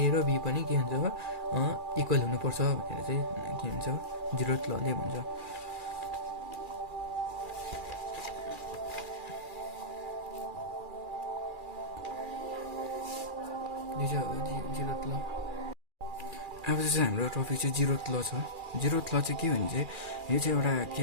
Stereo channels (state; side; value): late; left; 2.4 ms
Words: र बी पनि के हुन्छ, अब इक्वल हुनुपर्छ भनेर चाहिँ के भन्छ, 0th लले भन्छ। अब चाहिँ हाम्रो टपिक चाहिँ 0th ल छ। 0th ल चाहिँ के भने चाहिँ, यो चाहिँ एउटा